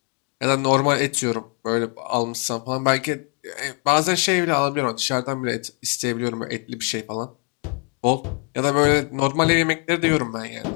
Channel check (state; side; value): quieter; right; 36.8 dB